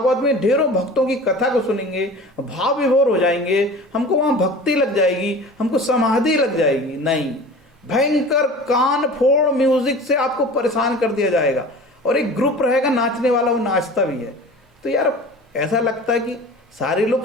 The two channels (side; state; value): both; normal; correlation 0.39